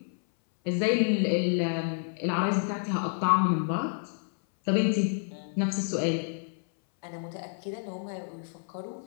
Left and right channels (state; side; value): silent; right; 59 dB below the other